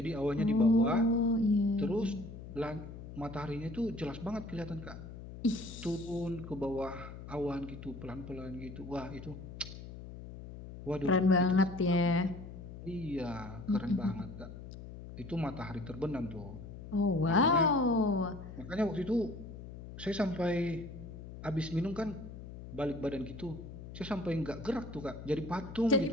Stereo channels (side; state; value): left; noise; hum, 12 dB below the sound